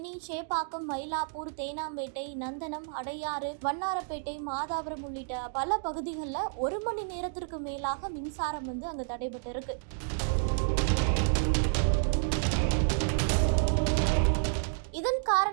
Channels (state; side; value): silent; left; digital silence